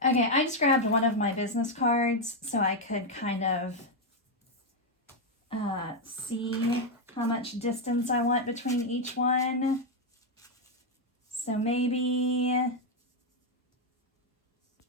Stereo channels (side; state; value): both; normal; correlation 0.02